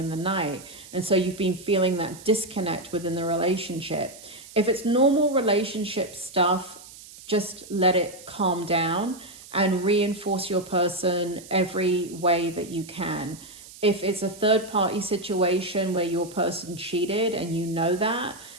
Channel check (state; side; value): noise; right; hiss, 18 dB below the sound